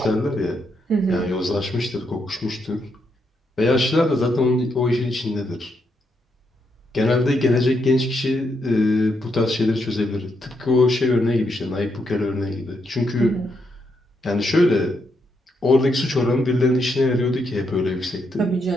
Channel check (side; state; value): both; normal; correlation 0.79